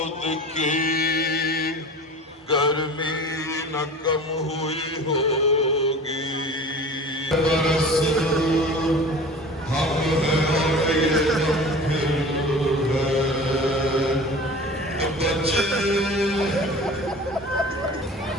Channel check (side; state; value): both; normal; correlation 0.39